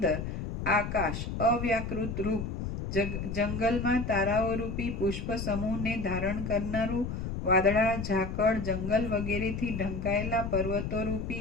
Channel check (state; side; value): noise; left; rumble, 4 dB below the sound